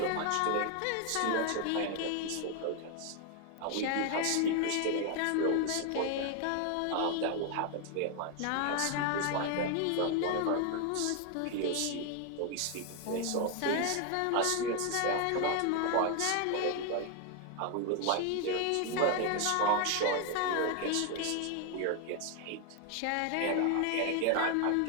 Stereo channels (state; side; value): different; both; correlation 0.01